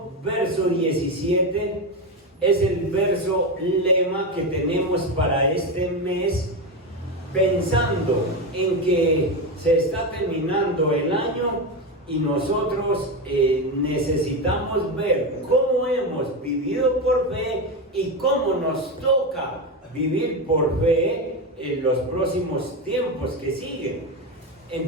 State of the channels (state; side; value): normal; both; correlation 0.15